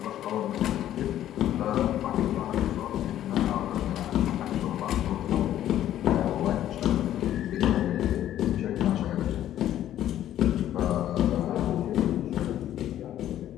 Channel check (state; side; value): quieter; right; 12.0 dB